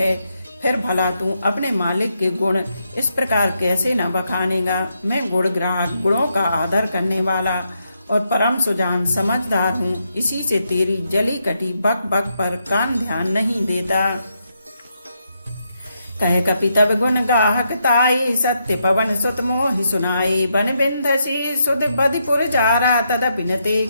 फिर भला तू अपने मालिक के गुण इस प्रकार कैसे न बखानेगा। मैं गुण ग्राहक, गुणों का आदर करने वाला और परम सुजान समझदार हूँ, इसी से तेरी जली कटी बक बक पर कान ध्यान नहीं देता। कह कपि तब गुण गाहक ताई, सत्य पवन सुत मोहि सुनाई, बन बिंधसी सुध बधिपुर जारा, तदपि न ते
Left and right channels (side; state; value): both; inverted; correlation -0.80